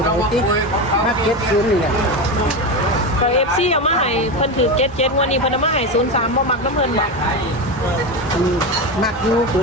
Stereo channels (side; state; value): both; normal; correlation 0.17